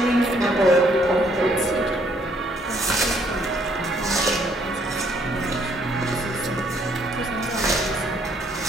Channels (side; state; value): both; normal; correlation 0.67